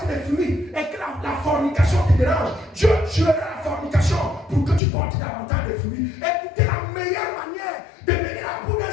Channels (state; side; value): drops out; right; at 4.8 s